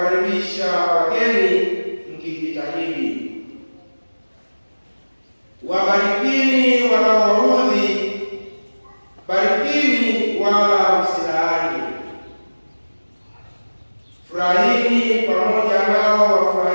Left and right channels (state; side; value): inverted; both; correlation -1.00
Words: wageni, mkijitahidi. Wabarikini wanaowaudhi, barikini wala msilaani. Furahini pamoja nao